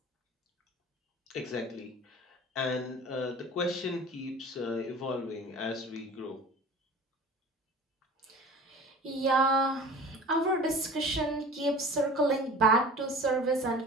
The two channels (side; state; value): both; normal; correlation 0.41